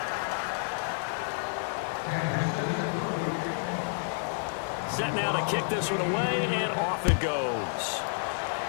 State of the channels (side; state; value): right; silent; digital silence